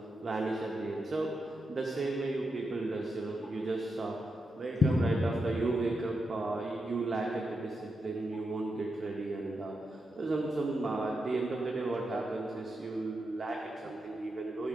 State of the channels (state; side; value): normal; both; correlation 0.86